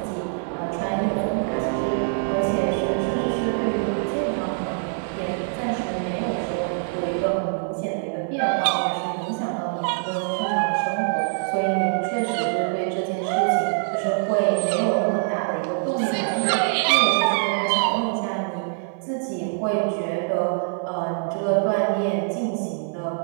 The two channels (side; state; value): left; silent; 62 dB below the other